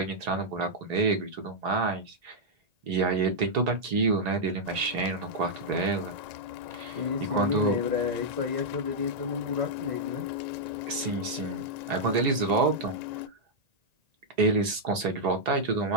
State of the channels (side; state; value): left; late; 1.9 ms